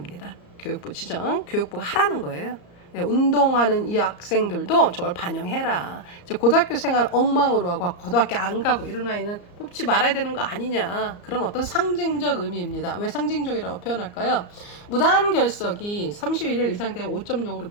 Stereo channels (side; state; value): right; late; 34 ms